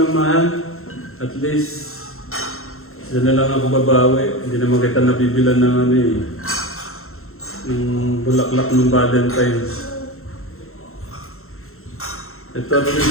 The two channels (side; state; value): right; late; 0.62 ms